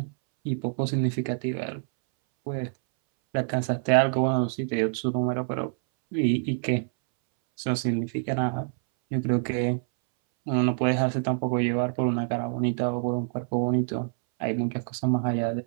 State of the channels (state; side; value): silent; left; 61 dB below the other